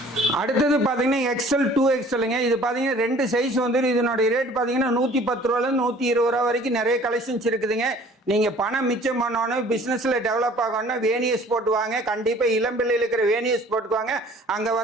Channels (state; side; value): normal; both; correlation 0.51